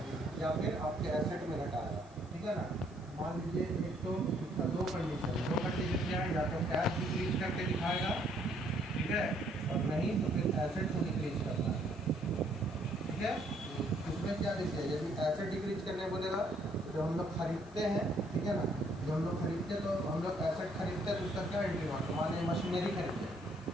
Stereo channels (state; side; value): noise; left; hiss, 27 dB below the sound